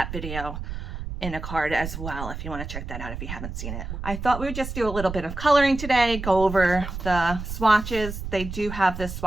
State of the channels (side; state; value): right; noise; rumble, 7 dB below the sound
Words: video in a card as well if you want to check that out if you haven't seen it. I thought we would just do a little bit of coloring today, go over the swatches. They do have this